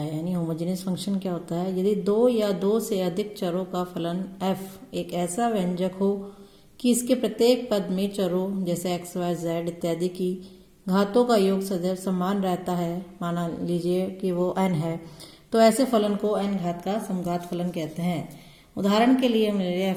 यानी होमोजेनियस फंक्शन क्या होता है। यदि दो या दो से अधिक चरों का फलन f एक ऐसा व्यंजक हो कि इसके प्रत्येक पद में चरों जैसे x, y, z इत्यादि की घातों का योग सदैव समान रहता है, माना लीजिए कि वो n है, तो ऐसे फलन को n घात का समघात फलन कहते हैं। उदाहरण के लिए हम ले लिया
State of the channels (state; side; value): identical; both; correlation 1.00